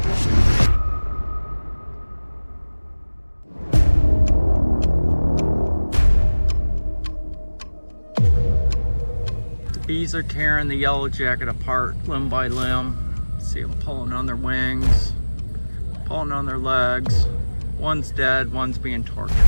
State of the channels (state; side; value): inverted; both; correlation -1.00